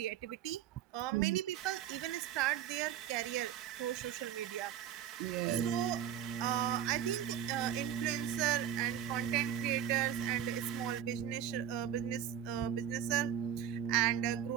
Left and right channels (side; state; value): left; quieter; 10.1 dB